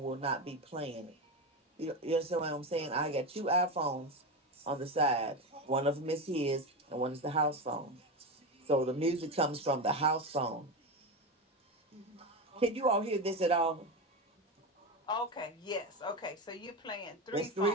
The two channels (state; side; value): normal; both; correlation 0.18